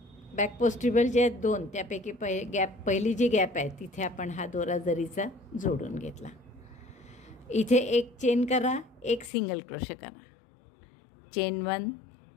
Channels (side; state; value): right; drops out; at 9.3 s